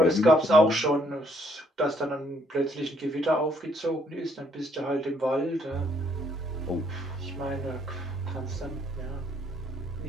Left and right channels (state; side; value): normal; both; correlation 0.68